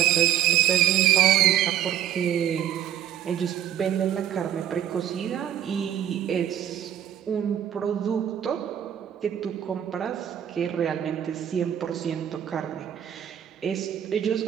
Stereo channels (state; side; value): quieter; left; 10.5 dB